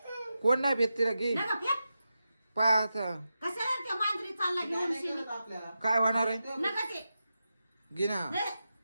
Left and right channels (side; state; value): both; inverted; correlation -0.90